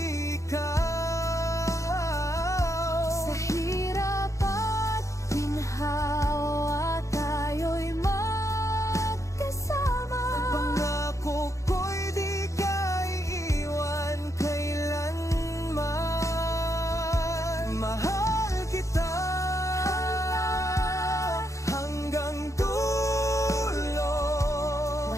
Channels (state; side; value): late; right; 0.15 ms